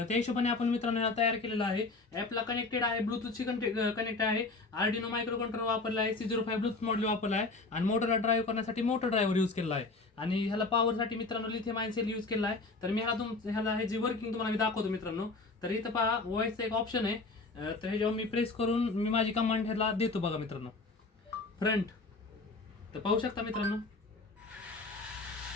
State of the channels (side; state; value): right; quieter; 3.6 dB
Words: त्या हिशोबाने आपण मित्रांनो ह्याला तयार केलेला आहे. ऍपला कनेक्टेड आहे, ब्लूटूथची कनेक्ट आहे, आर्डिनो मायक्रो कंट्रोलर वापरला आहे, C05 ब्लूटूथ मॉड्यूल वापरला आहे आणि मोटरला ड्राईव्ह करण्यासाठी मोटर ड्रायव्हर यूज केला आहे. आणि ह्याला पॉवरसाठी मित्रांनो लिथियम आयन सेल यूज केला आहे. तर मी ह्याला ह्याची वर्किंग तुम्हाला मी दाखवतो मित्रांनो. तर इथं पहा व्हॉइसचा एक ऑप्शन आहे. तर ह्याच्यावर मी प्रेस करून मी माझी कमांड ह्याला देतो बघा मित्रांनो. फ्रंट तर पाहू शकता मित्रांनो.